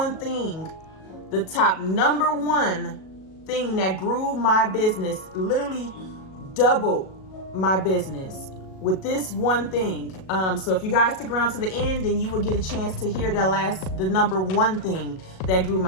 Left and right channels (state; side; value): late; right; 37 ms